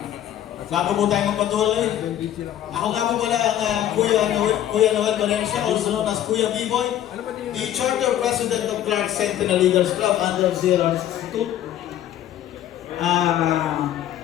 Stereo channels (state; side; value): quieter; right; 11.7 dB